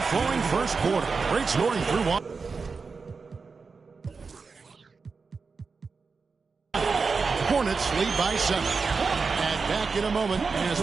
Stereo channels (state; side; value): quieter; left; 4.7 dB